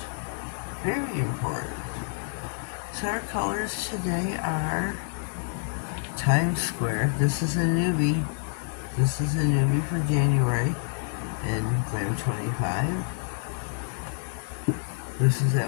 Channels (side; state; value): right; silent; digital silence